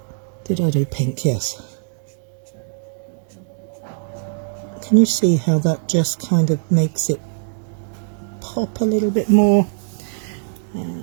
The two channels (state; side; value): silent; left; digital silence